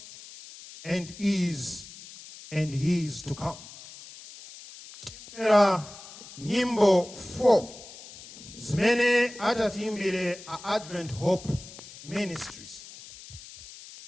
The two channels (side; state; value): left; noise; hiss, 17 dB below the sound